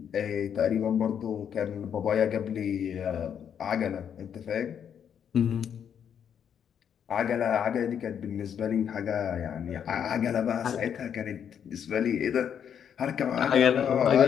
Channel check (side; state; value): right; quieter; 8.3 dB